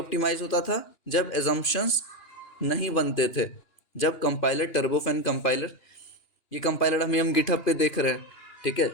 होता था? जब एजम्पशंस नहीं बनते थे। जब कंपाइलर, टर्बोफैन कंपाइलर, ये कंपाइलर हम गिटहब पे देख रहे हैं। ठीक है,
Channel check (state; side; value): late; right; 2.9 ms